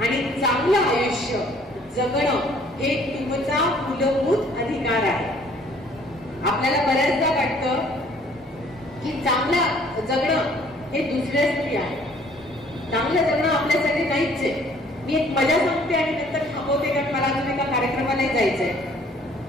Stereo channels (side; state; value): both; normal; correlation 0.58